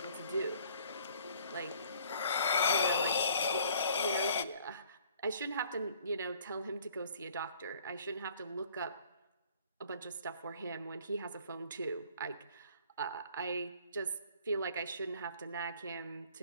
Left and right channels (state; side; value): inverted; both; correlation -0.56